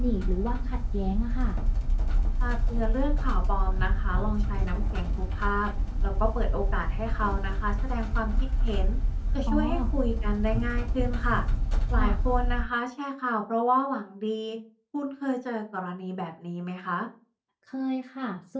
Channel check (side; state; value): both; identical; correlation 1.00